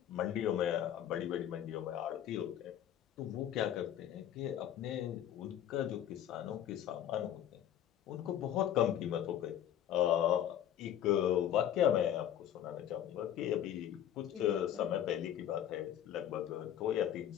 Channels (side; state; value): right; quieter; 10.7 dB